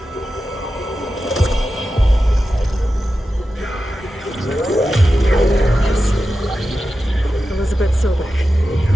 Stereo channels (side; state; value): both; normal; correlation 0.92